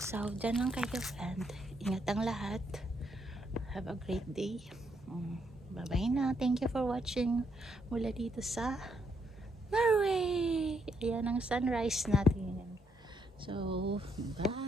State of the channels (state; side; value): normal; both; correlation 0.75